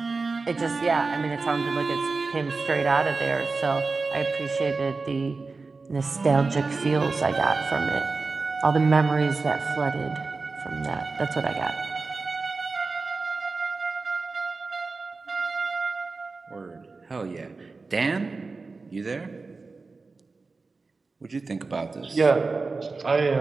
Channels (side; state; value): left; quieter; 4.0 dB